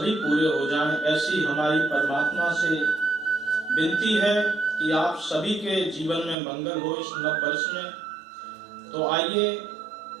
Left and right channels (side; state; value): left; drops out; at 6.4 s